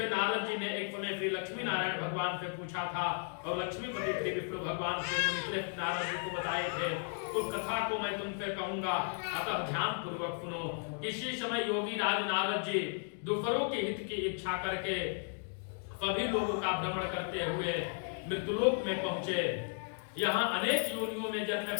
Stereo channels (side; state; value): right; silent; 55 dB below the other